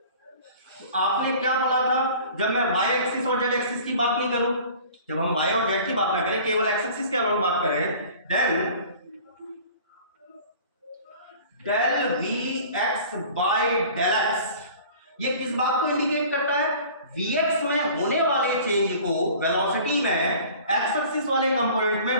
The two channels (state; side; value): inverted; both; correlation -0.45